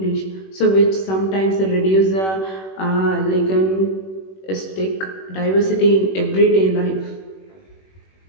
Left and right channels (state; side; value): late; right; 21 ms